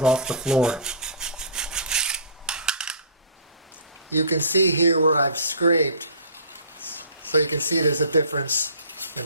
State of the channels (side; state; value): both; inverted; correlation -0.40